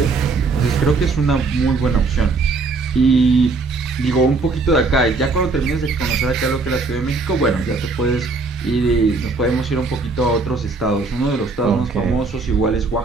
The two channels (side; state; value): left; quieter; 3.9 dB